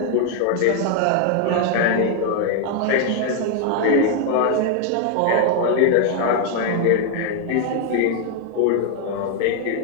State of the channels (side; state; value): both; different; correlation 0.01